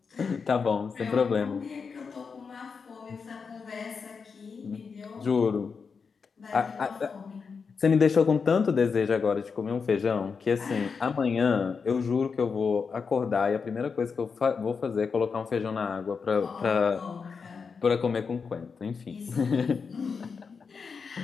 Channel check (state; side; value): quieter; right; 5.5 dB